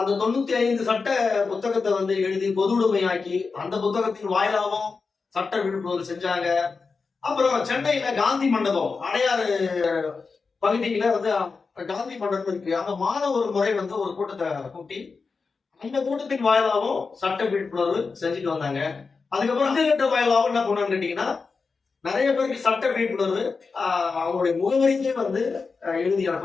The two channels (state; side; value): quieter; right; 4.6 dB